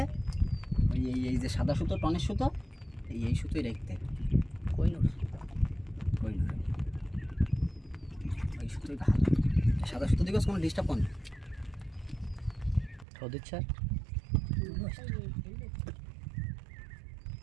ওই এই যে সাদা সুতো টনের সুতো, এই সুতোই রাখতে হবে। কই না কই না, এই সুতোই ভালো। সাদা সুতো দিকে কোনো ডিস্টার্ব করে না। তো দিচ্ছে আর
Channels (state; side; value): drops out; left; at 13.1 s